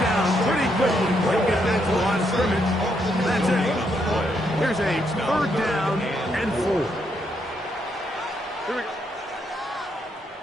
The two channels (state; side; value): normal; both; correlation 0.77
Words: pretty quickly. He'll get back to the line of scrimmage. That's it. Here's a 3rd down and 4. Here we go.